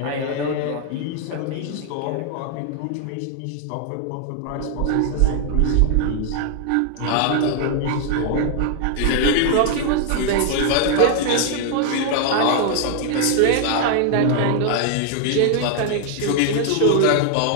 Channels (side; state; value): both; different; correlation 0.00